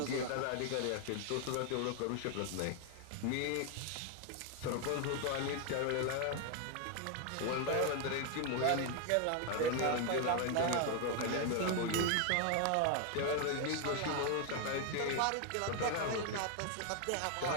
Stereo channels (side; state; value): both; different; correlation 0.01